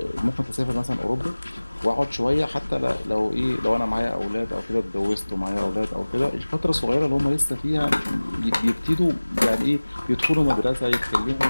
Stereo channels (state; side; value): inverted; both; correlation -1.00